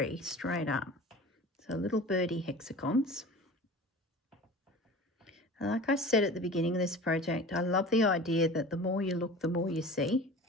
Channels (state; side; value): normal; both; correlation 0.38